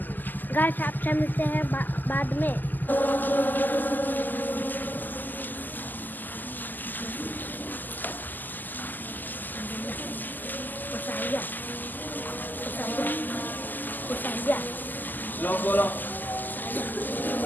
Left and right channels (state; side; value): late; right; 0.086 ms